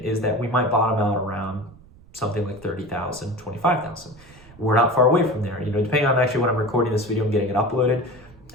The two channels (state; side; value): noise; right; rumble, 24 dB below the sound